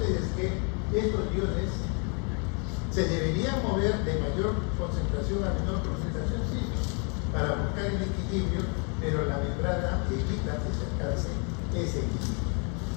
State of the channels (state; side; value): quieter; right; 36.9 dB